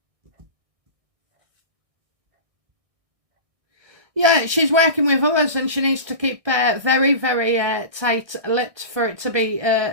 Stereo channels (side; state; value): left; late; 1.6 ms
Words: Yeah, she's working with others, and she needs to keep very, very tight-lipped for it to be